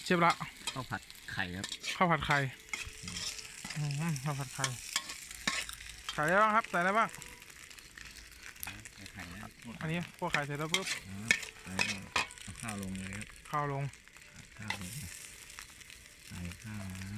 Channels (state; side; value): identical; both; correlation 1.00